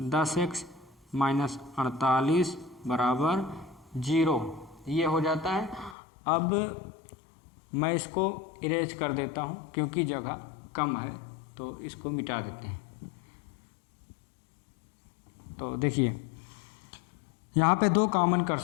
-48 बराबर 0, ये हो जाता है। अब मैं इसको इरेज कर देता हूँ क्योंकि जगह कम है, तो इसको मिटा देते हैं। तो देखिए यहाँ पे 2 कॉमन कर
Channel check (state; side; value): drops out; right; at 6.0 s